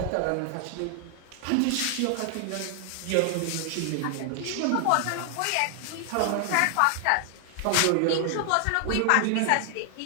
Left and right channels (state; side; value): different; both; correlation 0.00